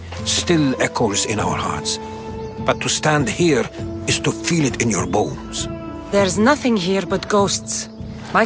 still echoes in our hearts, but to stand here is to feel it in your bones. There's nothing here but ghosts. My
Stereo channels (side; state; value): both; identical; correlation 1.00